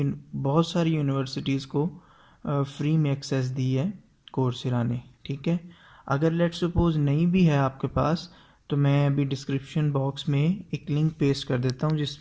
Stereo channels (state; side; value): identical; both; correlation 1.00